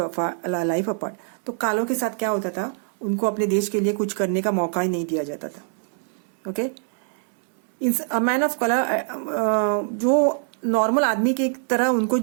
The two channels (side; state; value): left; silent; digital silence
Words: a life apart. तो कालों के साथ क्या होता था, उनको अपने देश के लिए कुछ करने का मौका ही नहीं दिया जाता था. Okay. a man of color, जो नॉर्मल आदमी के तरह उनको